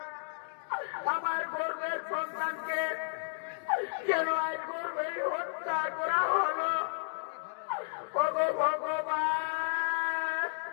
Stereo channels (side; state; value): right; silent; digital silence